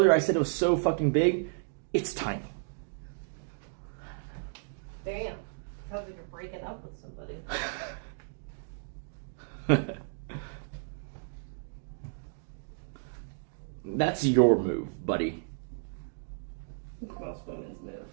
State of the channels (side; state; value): left; silent; digital silence